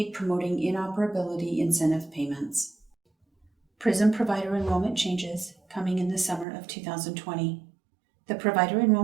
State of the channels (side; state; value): left; drops out; at 6.5 s